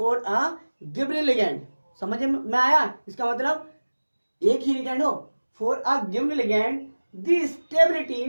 समझ में आया? इसका मतलब एक ही लिगेंड हो, for a given ligand the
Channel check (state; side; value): inverted; both; correlation -1.00